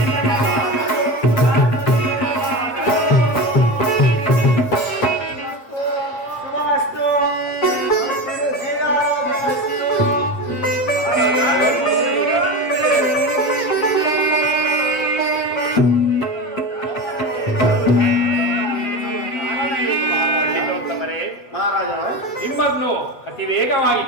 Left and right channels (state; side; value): late; right; 7.9 ms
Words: ನಿಮ್ಮನ್ನು ಅತಿ ವೇಗವಾಗಿ